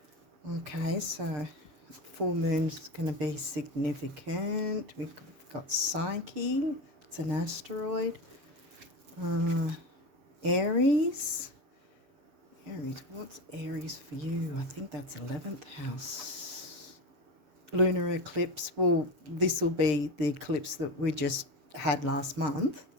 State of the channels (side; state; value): left; late; 6.7 ms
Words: Okay, so full moon's going to be significant. We've got Psyche, it's an asteroid. Aries, what's Aries for you? I think that's 11th house. Lunar eclipse, well, this will be the eclipse that we just had last month,